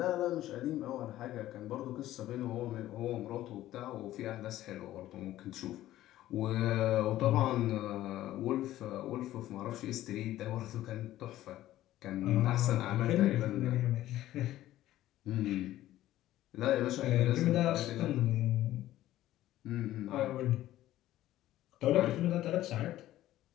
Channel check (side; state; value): right; quieter; 14.3 dB